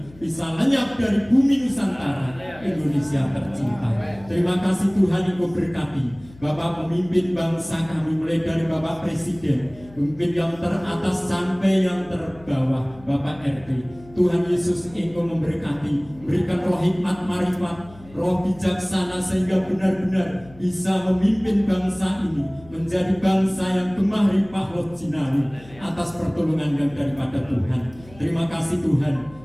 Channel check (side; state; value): left; noise; hum, 22 dB below the sound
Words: bisa lenyap dari bumi Nusantara Indonesia tercinta. Terima kasih Tuhan, Engkau berkati Bapak pemimpin bangsa kami, mulai dari Bapak Presiden, pemimpin yang teratas sampai yang terbawah, Bapak RT. Tuhan Yesus Engkau memberkati, memberikan roh hikmat, marifat, roh bijaksana, sehingga benar-benar bisa memimpin bangsa ini menjadi bangsa yang gemah ripah roh jinawi atas pertolongan yang daripada Tuhan. Terima kasih